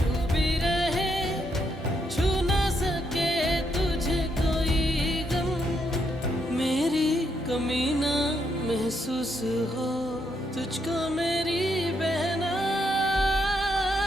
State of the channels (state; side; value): normal; both; correlation 0.77